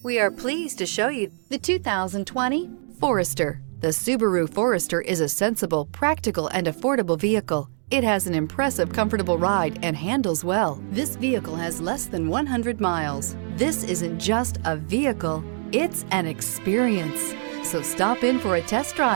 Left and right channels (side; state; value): left; silent; digital silence